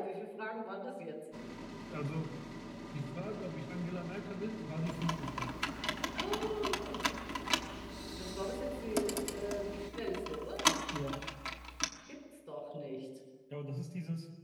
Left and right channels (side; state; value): both; identical; correlation 1.00